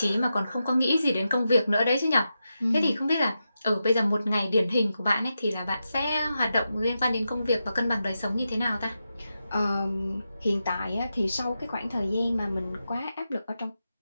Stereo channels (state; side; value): inverted; both; correlation -0.89